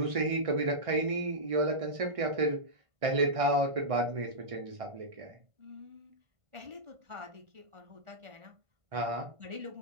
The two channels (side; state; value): left; late; 1.6 ms